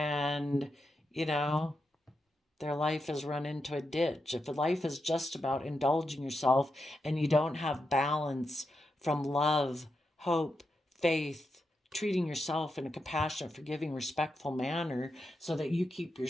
their life has run into a ditch. If life is just about indulging yourself and you don't have balance from love, hope, faith, treating yourself in a compassionate, forgiving, respectful manner so that you keep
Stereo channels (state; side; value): normal; both; correlation 0.86